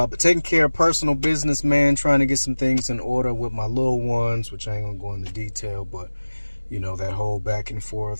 taking care of personal business, man, trying to get some things in order with my little ones, which I ain't gonna go into detail, but you know, that whole back and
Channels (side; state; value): both; inverted; correlation -1.00